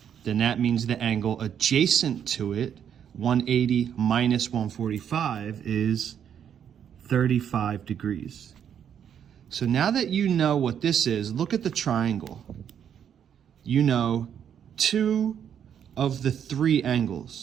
then that means the angle adjacent to it, 180 minus 145, is 35 degrees. So now that you know what this is, look at the triangle. You know two of the three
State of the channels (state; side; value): quieter; left; 8.7 dB